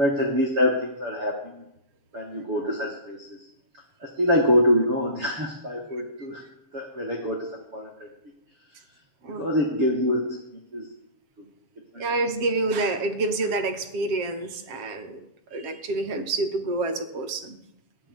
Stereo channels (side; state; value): left; late; 7.5 ms